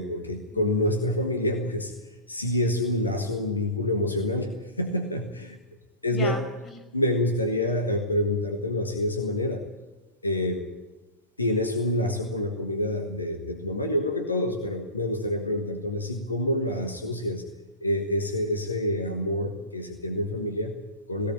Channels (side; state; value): both; inverted; correlation -0.33